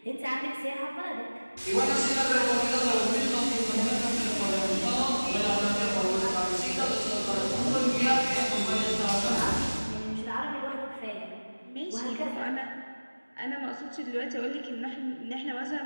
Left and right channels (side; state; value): both; inverted; correlation -1.00